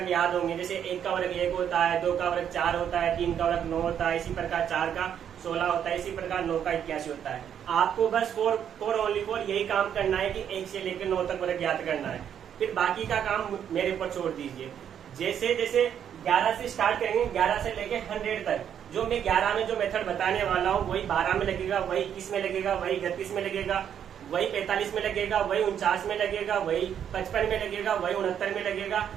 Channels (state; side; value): quieter; left; 9.0 dB